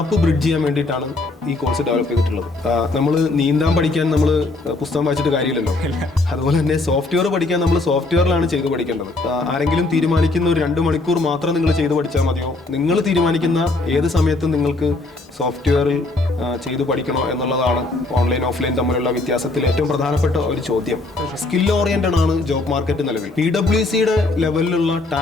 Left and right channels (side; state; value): right; quieter; 3.1 dB